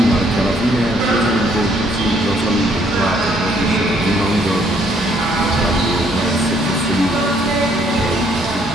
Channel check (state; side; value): normal; both; correlation 0.66